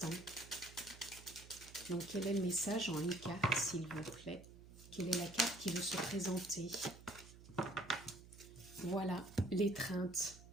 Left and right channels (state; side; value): noise; right; hum, 18 dB below the sound